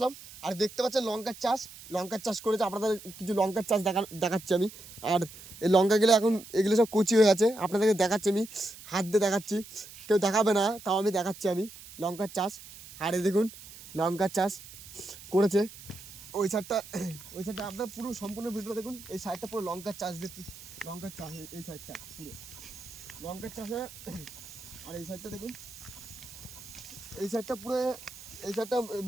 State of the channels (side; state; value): right; noise; hiss, 16 dB below the sound